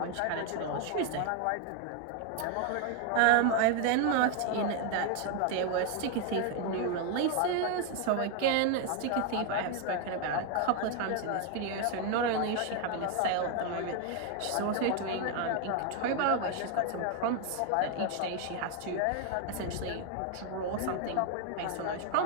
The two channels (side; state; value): both; different; correlation 0.01